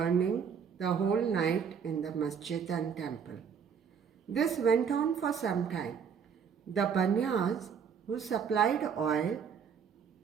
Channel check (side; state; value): left; quieter; 7.0 dB